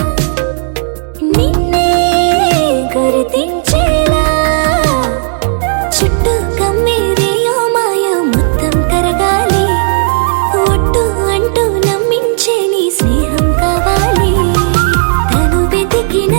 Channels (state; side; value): silent; left; digital silence